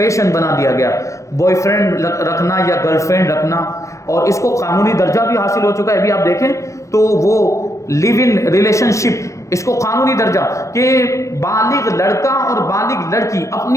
بنا دیا گیا، بوائے فرینڈ رکھنا یا گرل فرینڈ رکھنا، اور اس کو قانونی درجہ بھی حاصل ہو چکا ہے. ابھی آپ دیکھیں تو وہ لیو ان ریلیشن شپ، اس کو قانونی درجہ کہ بالغ لڑکا اور بالغ لڑکی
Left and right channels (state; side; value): late; right; 0.15 ms